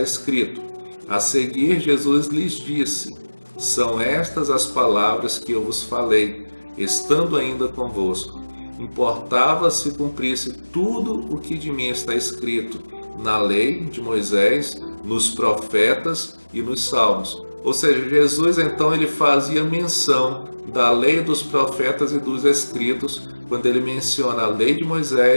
escrito: a seguir, Jesus lhes disse: são estas as palavras que eu vos falei, estando ainda convosco. Importava se cumprisse tudo o que de mim está escrito na lei de Moisés, nos profetas e nos salmos. Ou seja, Jesus então ele fazia menção da lei, dos profetas e dos escritos quando ele menciona a lei de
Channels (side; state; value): both; inverted; correlation -1.00